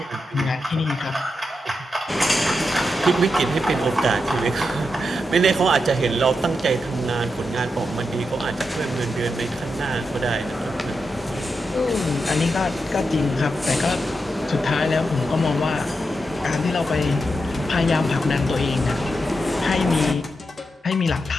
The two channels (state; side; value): normal; both; correlation 0.86